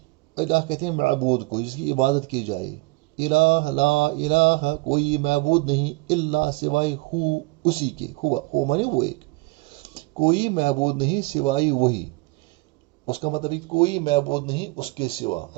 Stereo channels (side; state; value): left; quieter; 24.5 dB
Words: الہ کہتے ہیں معبود کو جس کی عبادت کی جائے. الہ لا الہ کوئی معبود نہیں، الا سوائے ہو اسی کے، ہوا مانے وہ ایک، کوئی معبود نہیں سوائے وہی. اس کا مطلب کوئی معبود نہیں اس کے سوا،